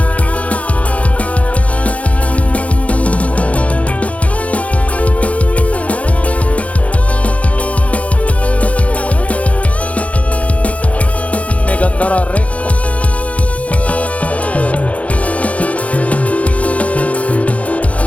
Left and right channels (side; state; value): right; late; 0.066 ms